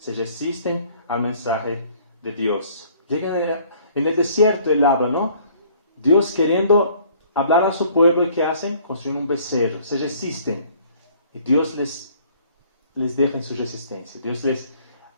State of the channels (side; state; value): both; inverted; correlation -0.57